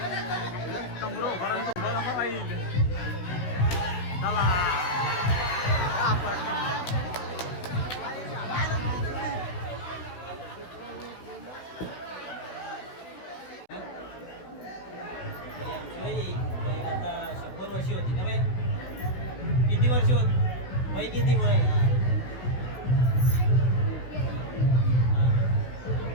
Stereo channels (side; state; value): right; late; 16 ms